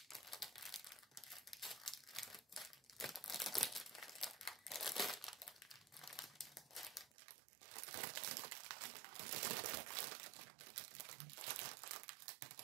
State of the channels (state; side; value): drops out; left; at 7.2 s